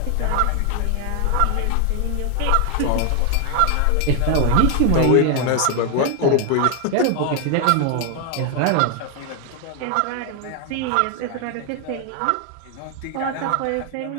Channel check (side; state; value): both; different; correlation 0.00